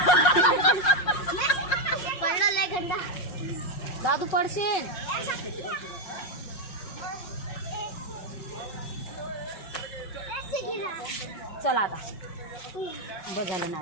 पडला लय गंदा. दादू पडशील. चला आता बस झालं ना.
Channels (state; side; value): late; right; 5.6 ms